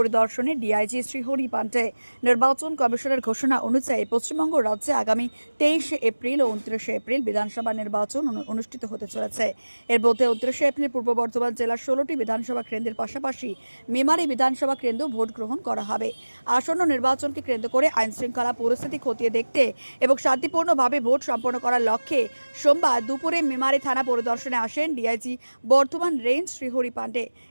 ডিআইজি শ্রীহরি পান্ডে। নির্বাচন কমিশনের ঘোষণা অনুযায়ী পশ্চিমবঙ্গ রাজ্যে আগামী 23 এপ্রিল ও 29 এপ্রিল বিধানসভা নির্বাচন অনুষ্ঠিত হতে চলেছে। এর মধ্যে 29 এপ্রিল পূর্ব বর্ধমান জেলার 16টি বিধানসভা কেন্দ্রের পাশাপাশি মেমারি বিধানসভা কেন্দ্র ভোট গ্রহণ করা হবে। আসন্ন নির্বাচনকে কেন্দ্র করে আইন শৃঙ্খলা পরিস্থিতি খতিয়ে দেখতে এবং শান্তিপূর্ণভাবে ভোট সম্পন্ন করার লক্ষ্যে সোমবার দুপুরে মেমারি থানা পরিদর্শনে আসেন ডিআইজি বর্ধমান রেঞ্জ শ্রীহরি পান্ডে।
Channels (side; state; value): both; inverted; correlation -1.00